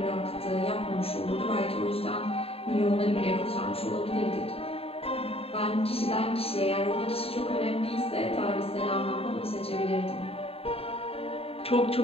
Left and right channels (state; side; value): late; right; 0.28 ms